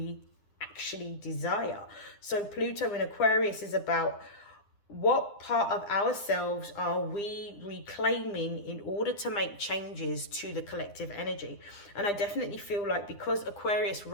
actually desire. So Pluto in Aquarius is about what part of ourselves are we reclaiming in order to make changes to the collective energy. And I definitely feel like, because Aquarius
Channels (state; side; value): late; right; 9.8 ms